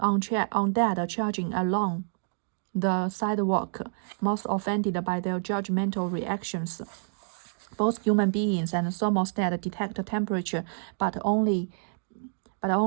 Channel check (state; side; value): silent; left; digital silence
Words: along the sidewalk, most offended by their judgmental reactions. Both human beings and thermostat detect temperature, but only